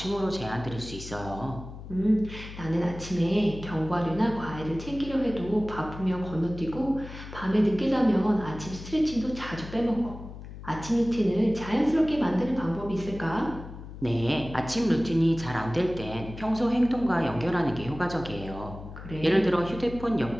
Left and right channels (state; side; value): noise; left; hum, 12 dB below the sound